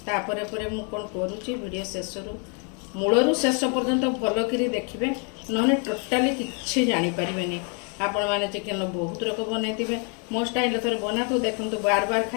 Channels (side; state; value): right; quieter; 37.6 dB